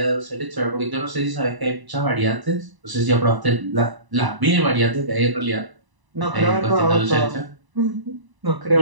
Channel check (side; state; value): left; late; 1.0 ms